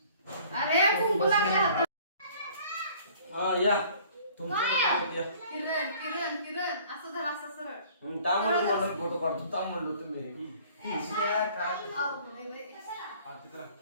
अरे कुंकू लागले हातात. हा या तुमच्या किरण किरण किरण असं धर असं सरळ तांबडं म्हणून फोटो काढतो तांब म्हणलो तुम्ही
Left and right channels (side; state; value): both; inverted; correlation -0.53